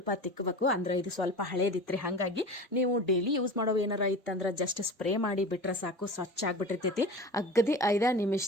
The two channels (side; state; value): both; normal; correlation 0.33